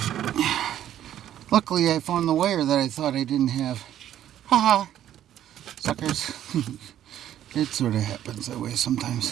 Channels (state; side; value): quieter; left; 11.4 dB